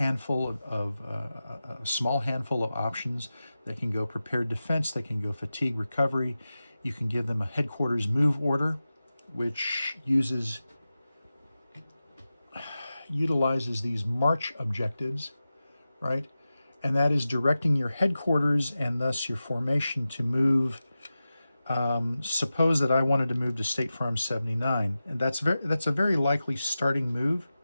a small handful of options. They can go prepared defense, they can go fatigue recovery. You can give them a headquarters move order, which utilizes these march objectives, right? And that is directing your headquarters and thus your formation to move. Suppose that I wanted to move to State Farm 79, and that's a very likely starting move,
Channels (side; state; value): both; inverted; correlation -0.94